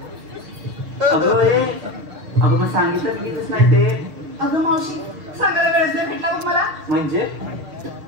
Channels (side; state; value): left; late; 6.4 ms